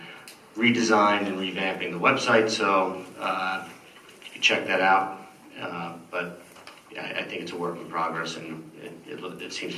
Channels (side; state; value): both; identical; correlation 1.00